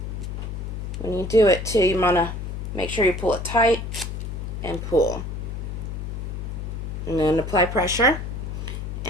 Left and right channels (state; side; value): noise; left; hum, 5 dB below the sound